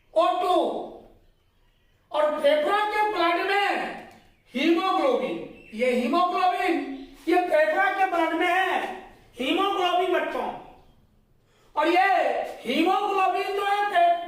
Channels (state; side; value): identical; both; correlation 1.00